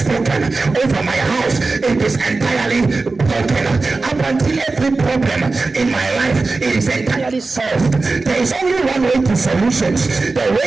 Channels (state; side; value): quieter; left; 3.7 dB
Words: over my house, it is entirely broken. Up until every problem in my life, it is entirely solved. There is only one way to solutions. The